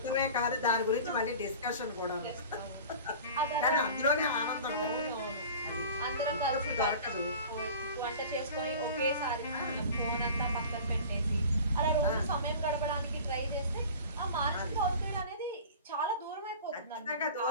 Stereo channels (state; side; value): inverted; both; correlation -0.39